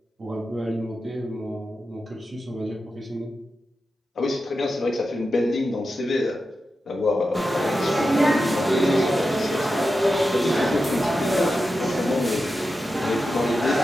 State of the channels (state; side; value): normal; both; correlation 0.90